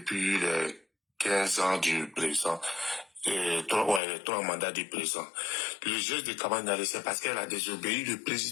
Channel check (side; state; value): right; drops out; at 4.0 s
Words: les 15 ans du président, les 3 mandats du président. Le geste de Kamaniali, c'est parce qu'elle a désobéi le